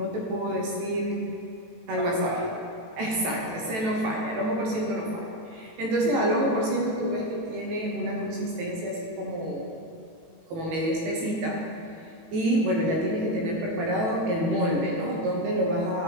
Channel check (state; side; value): late; left; 18 ms